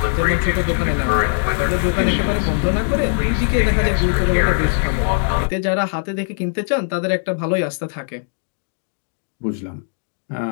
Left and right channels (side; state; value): right; silent; digital silence